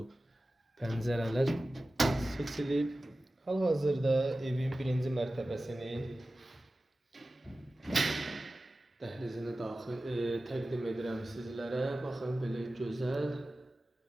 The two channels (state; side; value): normal; both; correlation 0.96